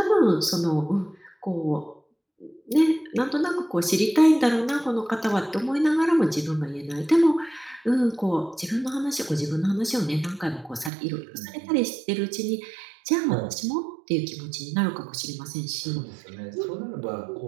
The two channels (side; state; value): left; drops out; at 10.9 s